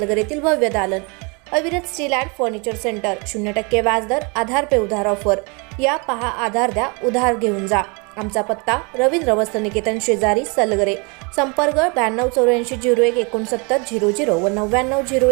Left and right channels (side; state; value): left; quieter; 31.7 dB